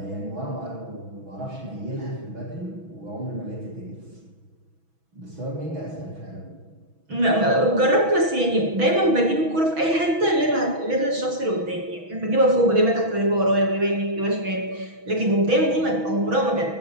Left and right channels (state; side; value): late; left; 6.1 ms